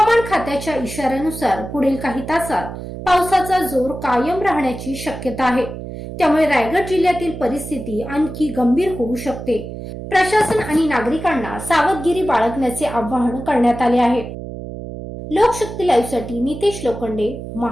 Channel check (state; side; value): noise; right; hum, 9 dB below the sound